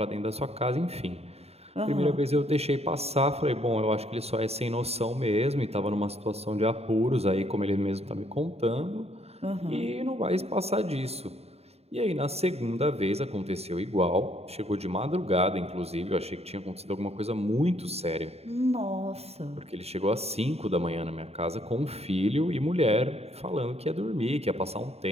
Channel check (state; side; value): late; left; 0.30 ms